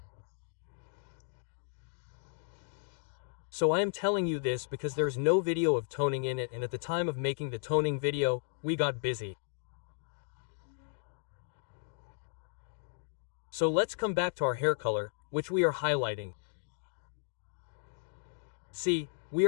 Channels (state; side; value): silent; right; digital silence